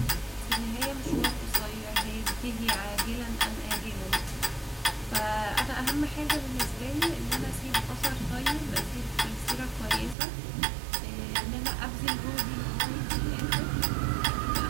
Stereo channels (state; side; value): drops out; left; at 10.2 s